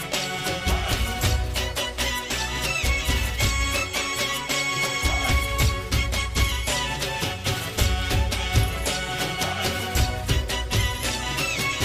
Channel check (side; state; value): both; identical; correlation 1.00